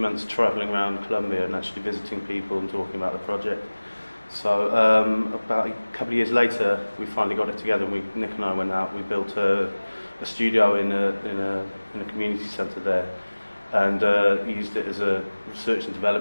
travelling around Colombia and actually visiting people and talking about the project. So about a couple of years later, we finally got it together, and Nick and I went out, we built a studio in a community centre there, and used it as a research and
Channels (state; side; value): inverted; both; correlation -1.00